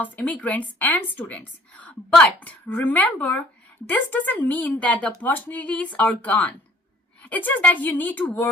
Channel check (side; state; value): both; normal; correlation 0.56